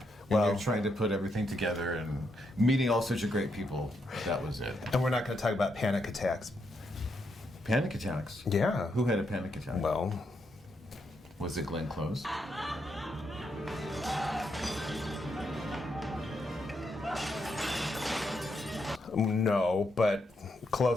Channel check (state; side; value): normal; both; correlation 0.80